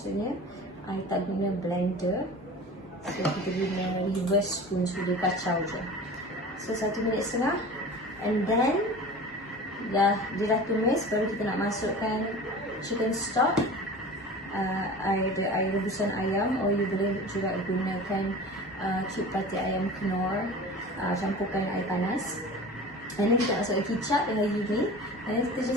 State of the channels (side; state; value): both; normal; correlation 0.37